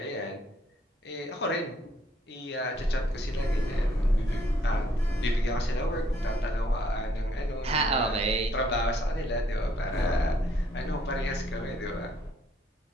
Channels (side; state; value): both; normal; correlation 0.67